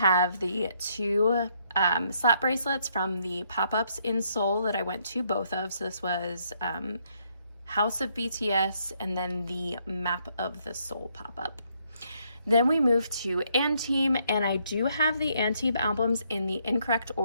the 2 slap bracelets from the pop-ups in Seoul that I went to both of. So this was House of BTS and then the Map of the Seoul pop-up. Then we move to Team, and I do have the Team albums in the incorrect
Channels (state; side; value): inverted; both; correlation -0.72